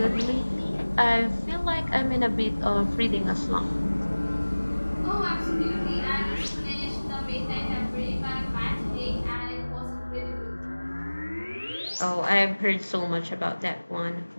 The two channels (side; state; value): both; inverted; correlation -1.00